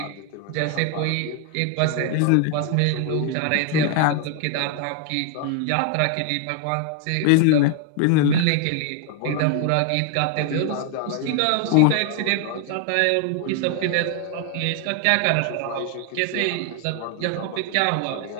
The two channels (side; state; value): both; different; correlation 0.00